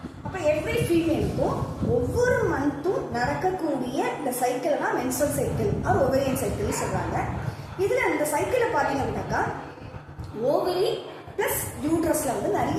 அப்போ எவ்ரி ஃபீமேலுக்கும் ஒவ்வொரு மந்த்தும் நடக்கக்கூடிய இந்த சைக்கிள் தான் மென்சுரல் சைக்கிள் ஆர் ஓவேரியன் சைக்கிள்னு சொல்றாங்க. இதுல இந்த சைக்கிளை பார்த்தீங்க அப்படின்னாக்கா ஓவரி பிளஸ் யூட்ரஸ்ல வந்து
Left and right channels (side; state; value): both; identical; correlation 1.00